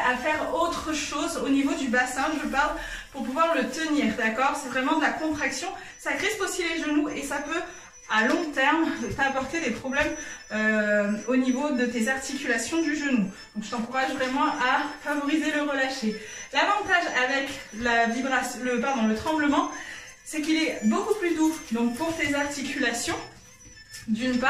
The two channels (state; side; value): identical; both; correlation 1.00